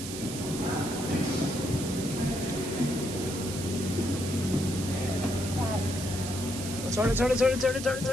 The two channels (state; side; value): noise; right; hiss, 8 dB below the sound